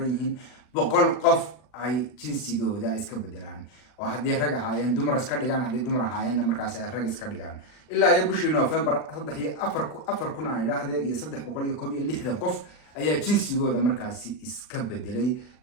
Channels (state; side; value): late; right; 40 ms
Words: yihiin 100 qof ay jinsigooda iska bedelaan oo haddii rag ahaayeen dumar iska dhigaan haddii dumar ahaayeen markaas ay rag iska dhigaan ilaa ay bishii November 4 kun aan idhaahdee iyo 360 qof ayaa jinsigooda markaasi iska bedelay